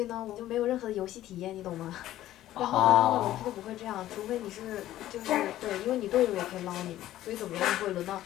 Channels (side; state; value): right; quieter; 13.8 dB